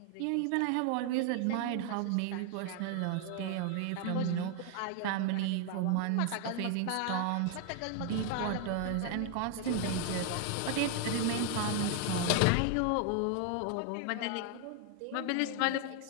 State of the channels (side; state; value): both; different; correlation 0.01